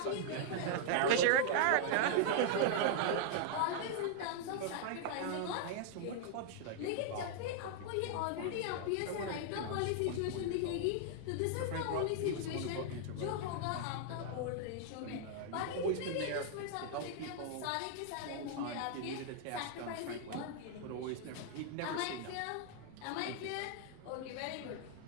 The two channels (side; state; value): both; different; correlation 0.00